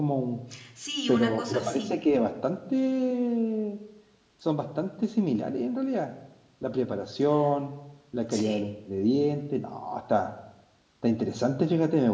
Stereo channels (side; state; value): both; identical; correlation 1.00